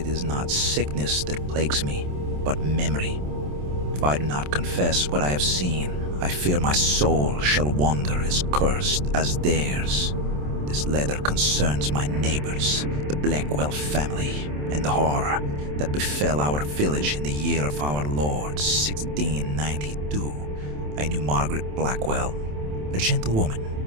is not sickness that plagues me, but memory. If I do not confess what I have seen, I fear my soul shall wander as cursed as theirs. This letter concerns my neighbors, the Blackwell family, and the horror that befell our village in the year of our Lord 1692. I knew Margaret Blackwell, a gentle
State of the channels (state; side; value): late; left; 27 ms